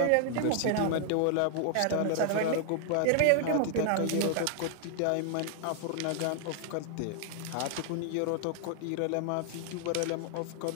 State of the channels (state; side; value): different; both; correlation 0.00